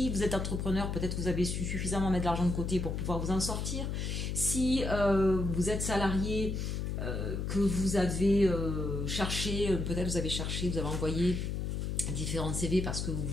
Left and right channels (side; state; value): left; noise; hum, 2 dB below the sound